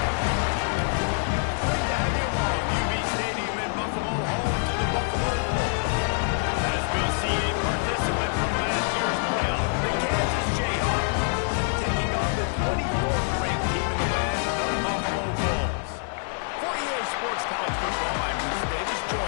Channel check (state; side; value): silent; right; 56 dB below the other